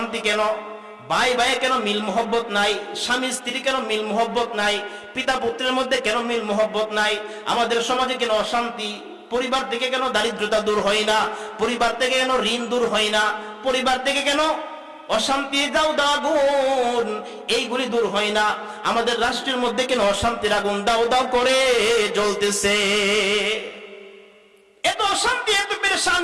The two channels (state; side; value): identical; both; correlation 1.00